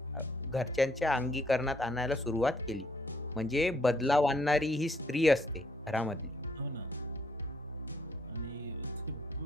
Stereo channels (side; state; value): both; normal; correlation 0.68